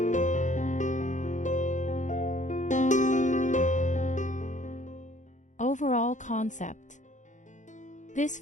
Overall concept. This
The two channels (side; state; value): right; late; 0.36 ms